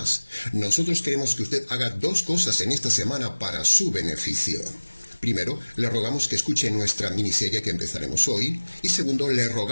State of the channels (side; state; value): both; inverted; correlation -1.00